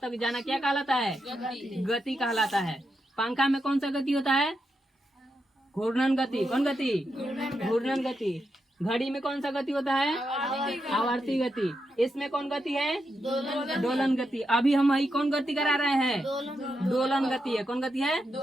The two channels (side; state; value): both; normal; correlation 0.85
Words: जाना क्या कहलाता है, गति कहलाता है। पंखा में कौन सा गति होता है, घूर्णन गति। कौन गति, घूर्णन गति। घड़ी में कौन सा गति होता है, आवर्ती गति। इसमें कौन गति है, दोलन गति। अभी हम वही कौन गति करा रहे हैं, दोलन गति है। कौन गति है,